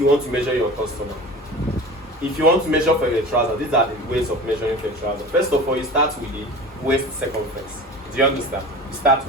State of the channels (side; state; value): both; normal; correlation 0.36